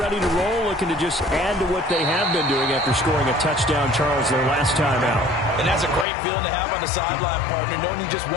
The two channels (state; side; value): drops out; right; at 6.1 s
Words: to roll, looking to just add to what they have been doing after scoring a touchdown, Charles, their last time out. And that's a great feeling to have on the sideline, partner, knowing you just